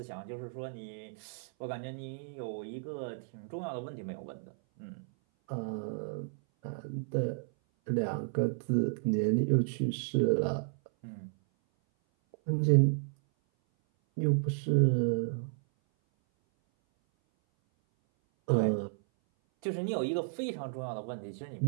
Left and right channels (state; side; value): silent; left; 56 dB below the other